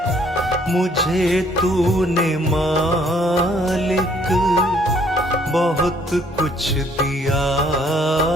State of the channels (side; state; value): both; normal; correlation 0.63